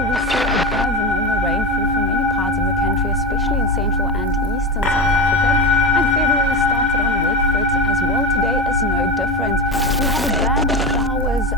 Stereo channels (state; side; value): normal; both; correlation 0.23